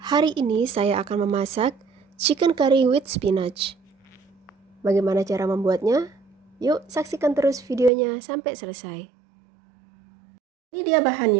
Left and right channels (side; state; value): left; drops out; at 7.9 s